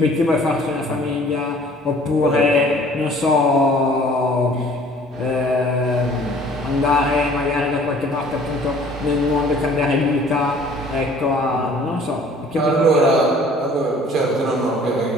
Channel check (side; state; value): both; normal; correlation 0.53